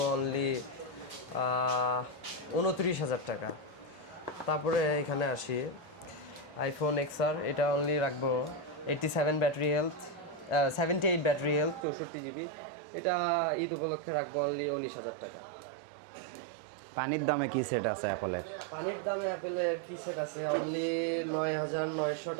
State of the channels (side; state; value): left; drops out; at 11.9 s